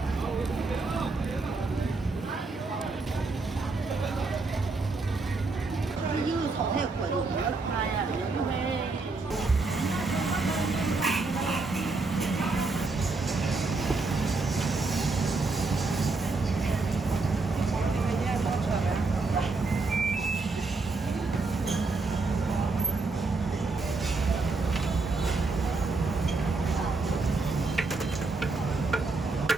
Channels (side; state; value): left; quieter; 3.7 dB